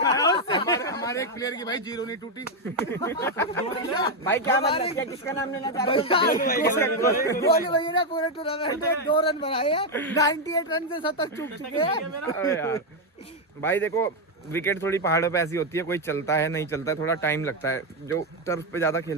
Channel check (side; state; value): both; normal; correlation 0.04